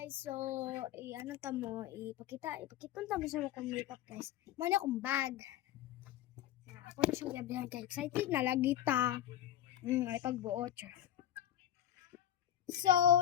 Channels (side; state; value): right; quieter; 11.6 dB